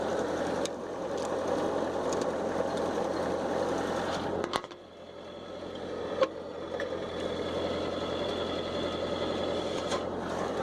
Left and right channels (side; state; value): both; identical; correlation 1.00